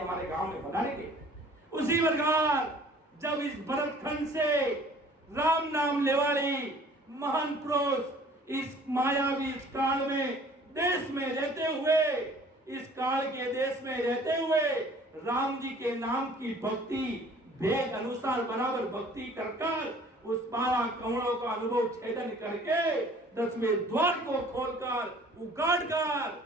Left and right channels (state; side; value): normal; both; correlation 0.52